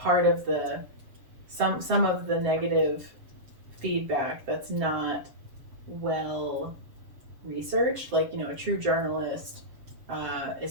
part of some of the negative feedback that's not well researched, like a true journalist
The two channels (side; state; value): left; late; 7.3 ms